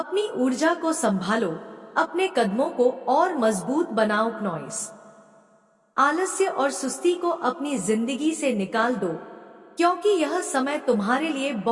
ऊर्जा को संभालो, अपने कदमों को और मजबूत बनाओ नॉइस। आलस्य और सुस्ती को अपनी जिंदगी से निकाल दो, क्योंकि यह समय तुम्हारे लिए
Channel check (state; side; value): identical; both; correlation 1.00